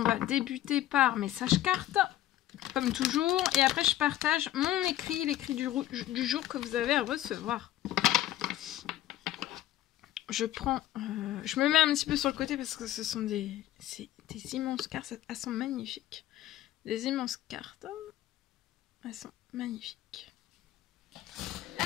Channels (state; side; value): quieter; right; 13.6 dB